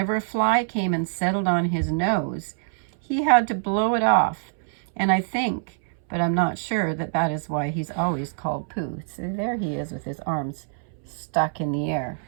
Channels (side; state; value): left; silent; 62 dB below the other